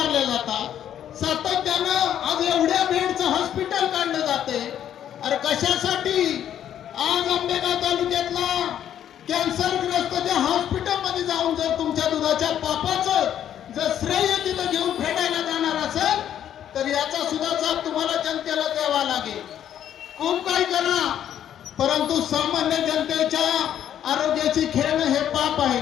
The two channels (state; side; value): quieter; right; 10.3 dB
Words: जातात, सातत्यानं आज एवढ्या बेडचं हॉस्पिटल काढलं जाते. अरे कशासाठी? आज आंबेगाव तालुक्यातला कॅन्सरग्रस्त त्या हॉस्पिटलमध्ये जाऊन जर तुमच्या दुधाच्या पापाचं जर श्रेय तिथं घेऊन फेडायला जाणार असेल तर याचा सुद्धा जाब तुम्हाला जनतेला द्यावा लागेल. खूप काही करा, परंतु सामान्य जनतेच्या आरोग्याची खेळणं हे पाप आहे.